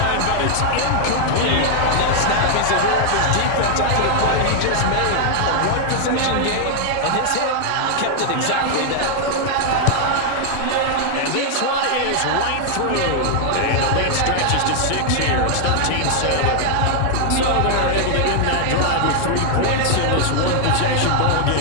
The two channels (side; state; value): both; different; correlation 0.00